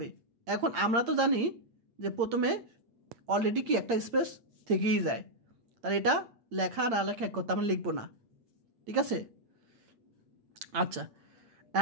এখন আমরা তো জানি যে প্রথমে অলরেডি কি একটা স্পেস থেকেই যায়, তাহলে এটা লেখা না লেখা এক কথা, আমরা লিখবো না, ঠিক আছে। আচ্ছা,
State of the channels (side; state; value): left; late; 8.7 ms